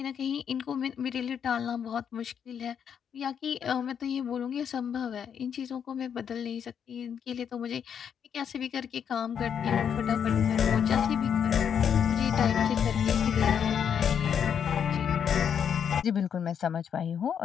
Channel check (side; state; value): right; quieter; 8.0 dB